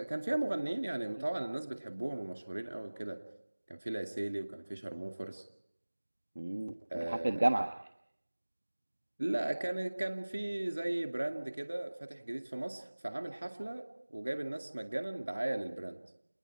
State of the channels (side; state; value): both; inverted; correlation -1.00